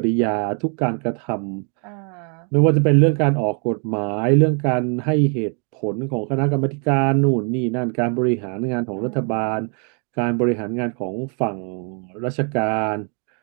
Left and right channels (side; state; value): left; quieter; 39.3 dB